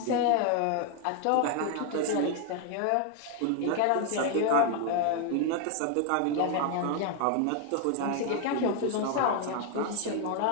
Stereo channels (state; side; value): different; both; correlation 0.00